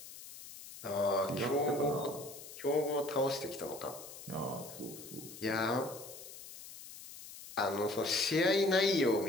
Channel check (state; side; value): noise; left; hiss, 14 dB below the sound